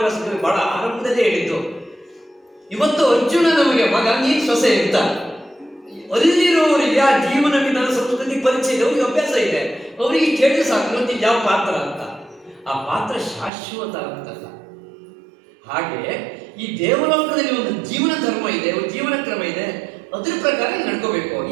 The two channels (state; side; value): drops out; left; at 13.5 s